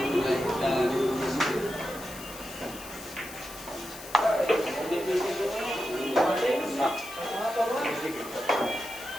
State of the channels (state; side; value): noise; left; hiss, 14 dB below the sound